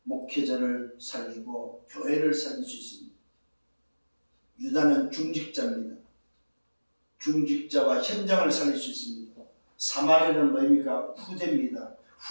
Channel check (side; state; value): both; inverted; correlation -1.00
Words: 목회자를 살리고 교회를 살릴 수 있습니다. 유다는 중직자입니다. 중직자와 현장을 살릴 수 있습니다. 사마리아는 뭐입니까? 후대입니다.